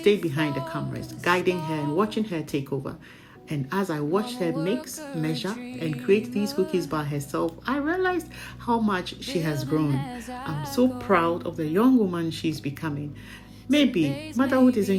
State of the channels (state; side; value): identical; both; correlation 1.00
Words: behind the cameras, guiding her and watching her take over. And as I watched her mix, measure, and create these cookies by herself, I realized how much she has grown. I'm so proud of the young woman she's becoming. Maybe motherhood